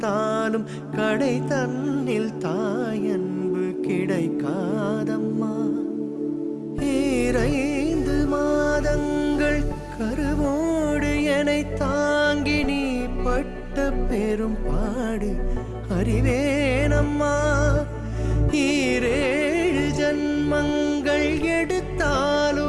கடை தன்னில் தாயன்பு கிடைக்காதம்மா. 2 மாதங்கள் கருவோடு என்னை தாங்கி நீ பட்ட பெரும் பாடு அறிவேனம்மா. 7 ஜன்மங்கள்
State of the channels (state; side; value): identical; both; correlation 1.00